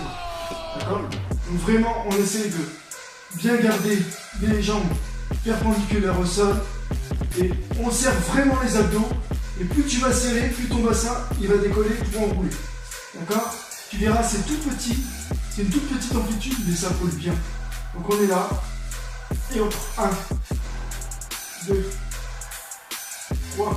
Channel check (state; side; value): identical; both; correlation 1.00